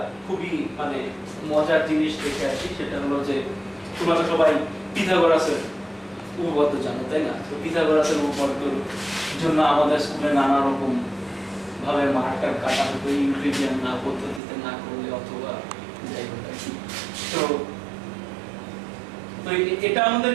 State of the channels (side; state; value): left; drops out; at 14.4 s